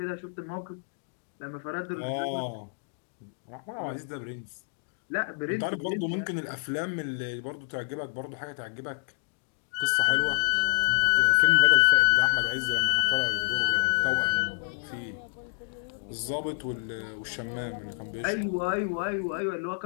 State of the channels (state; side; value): silent; right; digital silence